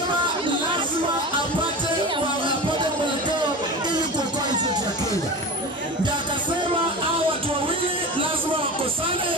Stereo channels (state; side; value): normal; both; correlation 0.30